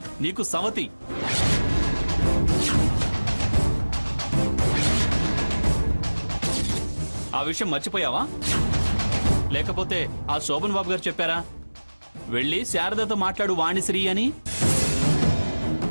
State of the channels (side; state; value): both; inverted; correlation -1.00